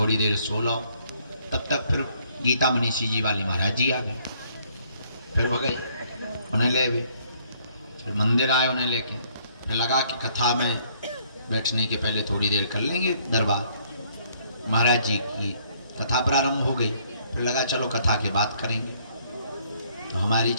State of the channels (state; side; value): inverted; both; correlation -0.65